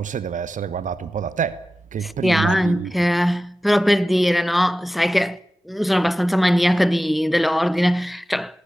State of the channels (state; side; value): normal; both; correlation 0.94